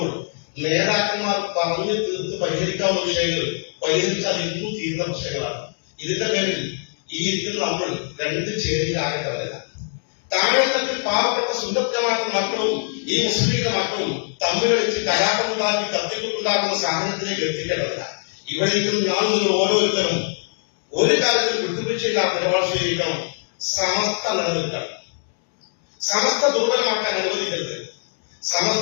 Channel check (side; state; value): right; silent; 64 dB below the other